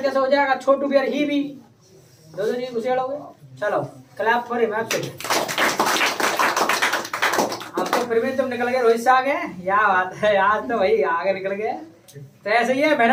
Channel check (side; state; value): both; identical; correlation 1.00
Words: कैसे हो जाएगा? छोटू भी और ही भी दो जी घुसेड़ोगे। चलो क्लैप फॉर हिम। अब तो फिर भी तुम निकल गए रोहित से आगे। क्या बात है आज तो भाई आगे निकल गए। तो ऐसे ही है